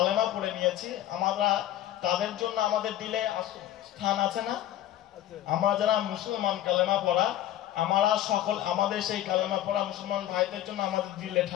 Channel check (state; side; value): quieter; right; 12.8 dB